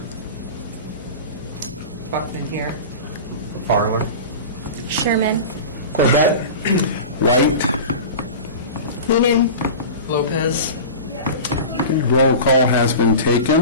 Buckman here. Farler. Sherman. Corbett. White. Noonan. Lopez. Okay, roll call has been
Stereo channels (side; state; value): both; inverted; correlation -0.32